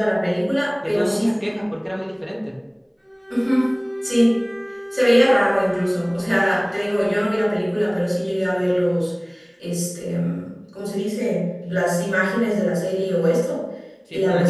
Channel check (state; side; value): identical; both; correlation 1.00